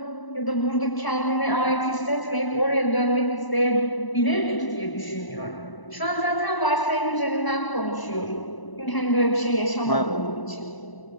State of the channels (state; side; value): late; right; 1.0 ms